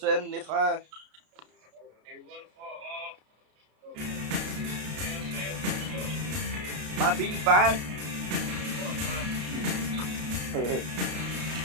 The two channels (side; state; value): left; late; 33 ms